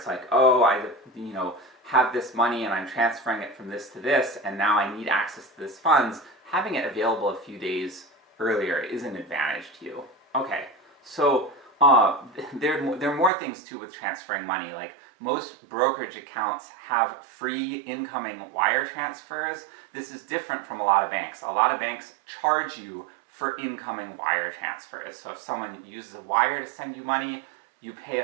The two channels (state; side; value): drops out; left; at 13.3 s